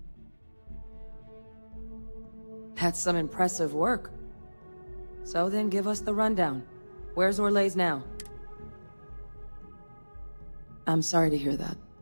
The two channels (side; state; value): both; inverted; correlation -1.00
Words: That's some impressive work. So then give us the rundown. Where's Orlays now? I'm sorry to hear that.